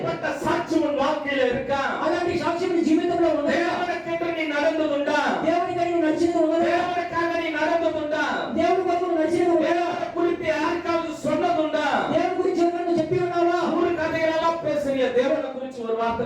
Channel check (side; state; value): both; identical; correlation 1.00